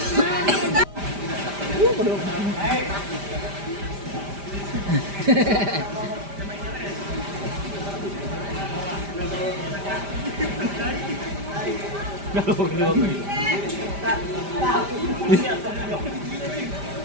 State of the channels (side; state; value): left; late; 5.0 ms